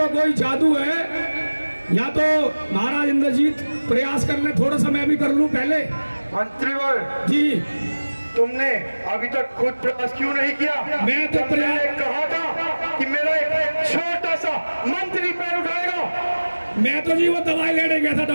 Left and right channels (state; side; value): inverted; both; correlation -1.00